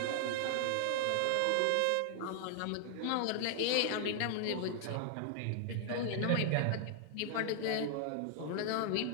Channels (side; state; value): both; different; correlation 0.00